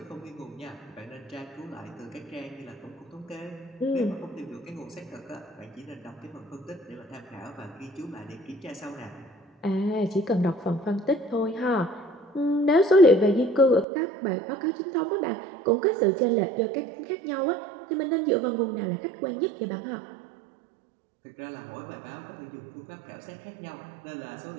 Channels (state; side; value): drops out; left; at 13.9 s